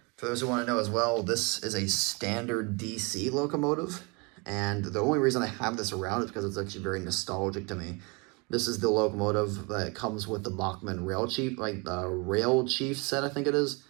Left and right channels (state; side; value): quieter; left; 29.8 dB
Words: for those who want to know as well, this is a standard DC locomotive. And the only reason I have this around is because it's actually very nostalgic to me. This is the locomotive that comes with the Bachmann Rail Chief, like the Rail Chief set, I think it is.